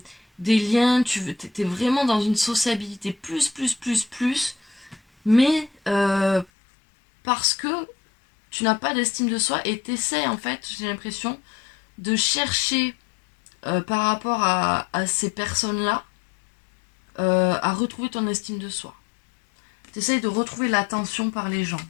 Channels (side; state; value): right; drops out; at 6.5 s